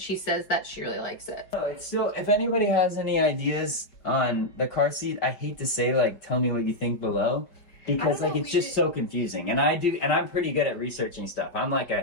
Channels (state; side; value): late; right; 5.3 ms